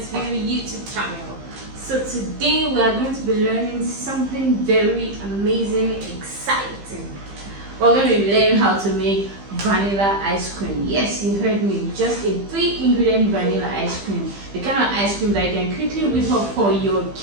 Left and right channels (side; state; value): left; late; 15 ms